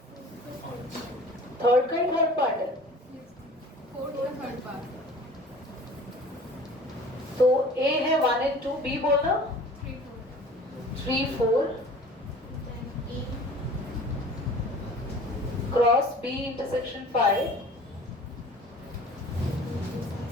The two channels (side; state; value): both; normal; correlation 0.45